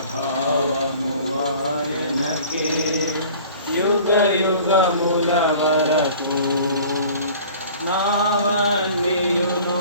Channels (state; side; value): inverted; both; correlation -0.46